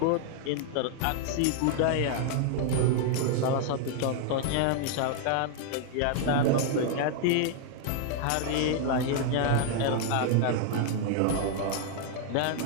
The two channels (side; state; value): both; different; correlation 0.00